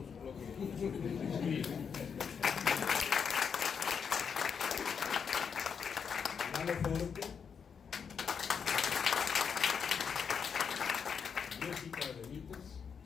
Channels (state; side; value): quieter; right; 6.6 dB